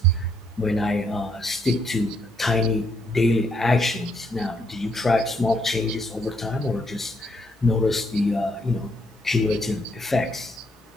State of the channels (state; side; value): normal; both; correlation 0.73